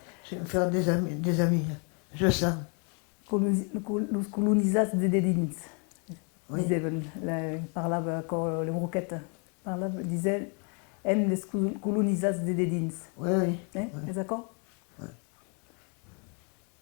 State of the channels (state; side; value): quieter; right; 36.9 dB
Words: des amis, je sens. Los colonizats de dedins, Oui. disaven, parlava con le broquettes, disait, en les colonizats de dedins. Oui, oui. Hein, Oui. est d'accord?